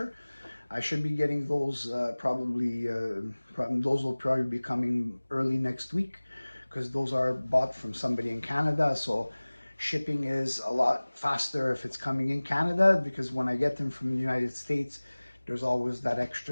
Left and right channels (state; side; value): inverted; both; correlation -1.00